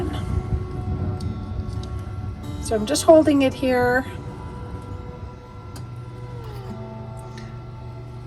So I'm just holding it here,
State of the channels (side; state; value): both; identical; correlation 1.00